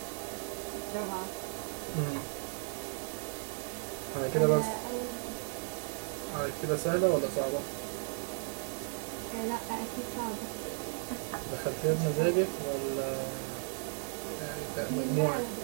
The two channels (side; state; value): left; silent; 54 dB below the other